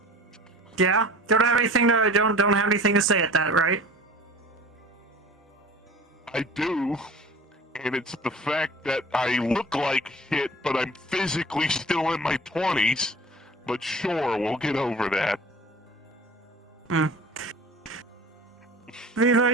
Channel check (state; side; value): normal; both; correlation 0.41